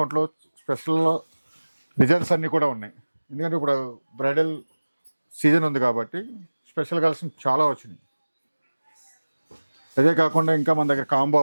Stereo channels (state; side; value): inverted; both; correlation -1.00